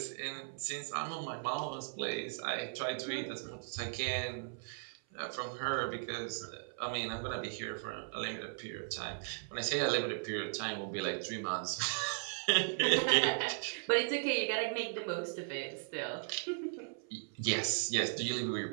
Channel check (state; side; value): silent; left; 53 dB below the other